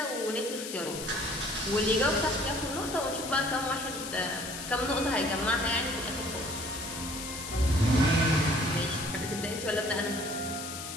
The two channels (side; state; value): left; noise; hiss, 8 dB below the sound